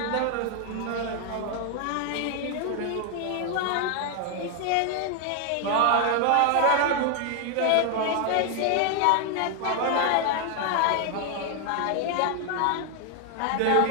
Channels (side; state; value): both; different; correlation 0.00